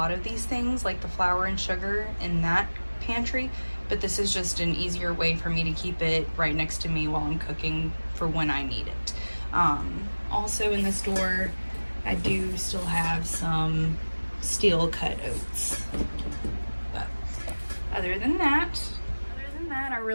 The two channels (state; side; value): inverted; both; correlation -1.00